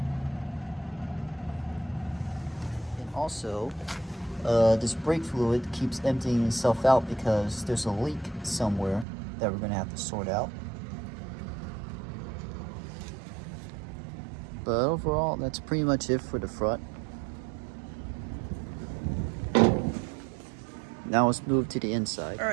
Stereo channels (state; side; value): drops out; left; at 9.1 s